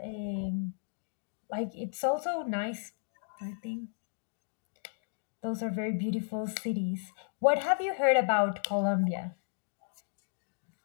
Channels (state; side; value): silent; right; digital silence